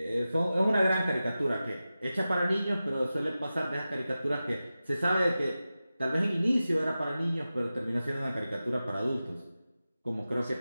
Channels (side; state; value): both; inverted; correlation -0.94